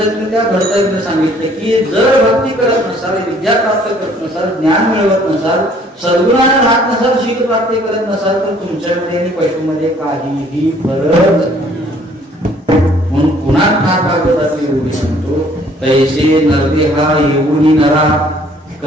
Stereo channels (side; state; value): both; normal; correlation 0.59